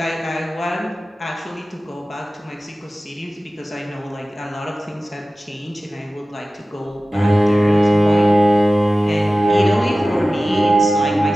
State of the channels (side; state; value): both; normal; correlation 0.96